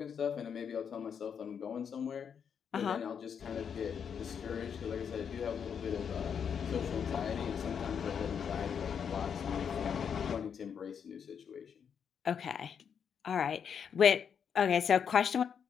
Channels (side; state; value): right; quieter; 7.3 dB